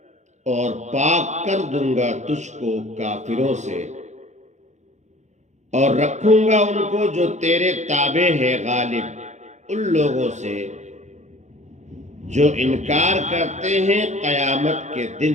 اور پاک کر دوں گا تجھ کو کافروں سے، اور رکھوں گا ان کو جو تیرے تابع ہیں غالب ان لوگوں سے جو انکار کرتے ہیں قیامت کے دن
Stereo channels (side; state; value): left; late; 0.34 ms